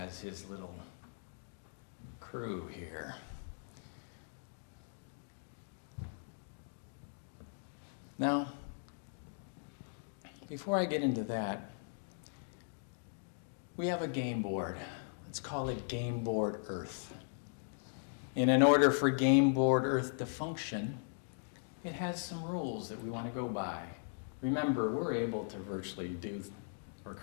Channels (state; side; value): silent; right; digital silence